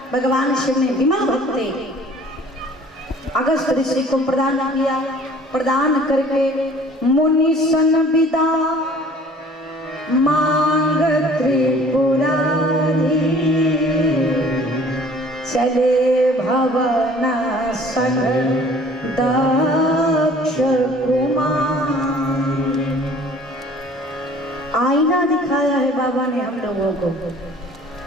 भगवान शिव ने विमल भक्ति अगस्त्य ऋषि को प्रदान किया। प्रदान करके मुनि सन विदा मांग त्रिपुरारी, चले भवन सन दक्ष कुमार। आईना दिखाया है बाबा ने हम लोगों को,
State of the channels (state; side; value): normal; both; correlation 0.51